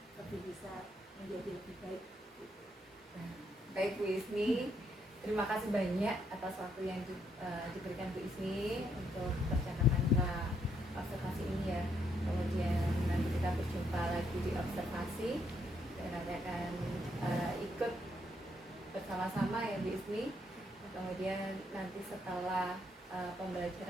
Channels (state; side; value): normal; both; correlation 0.74